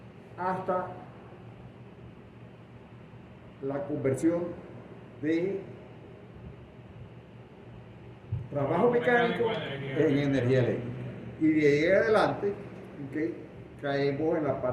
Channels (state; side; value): identical; both; correlation 1.00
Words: hasta la conversión de trabajo mecánico en energía eléctrica. Y de ahí en adelante, ¿okay? Caemos en la